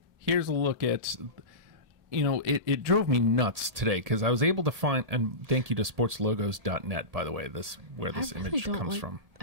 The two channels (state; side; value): late; left; 1.7 ms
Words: Here's a look at, you know, it drove me nuts today because I was able to find, and thank you to sportslogos.net, by the way, where this image comes from. I